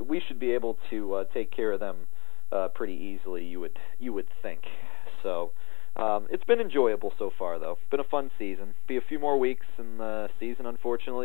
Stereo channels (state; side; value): quieter; right; 27.3 dB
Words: we should be able to take care of them pretty easily. You would think. So. It's been enjoyable so far, though. It's been a fun season. Be a few more weeks, and the season,